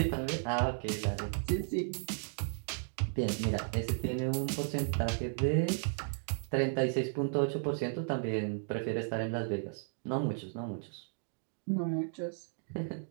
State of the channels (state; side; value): silent; left; digital silence